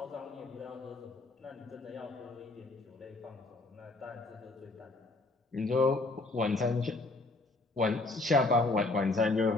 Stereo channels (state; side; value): quieter; right; 3.2 dB